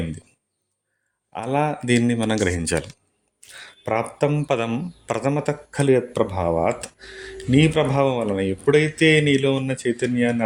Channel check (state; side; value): identical; both; correlation 1.00